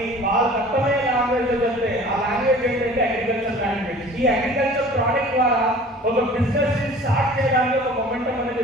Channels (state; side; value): normal; both; correlation 0.46